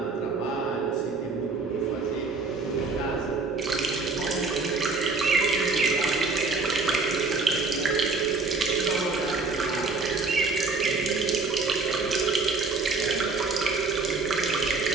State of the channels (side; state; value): left; quieter; 4.1 dB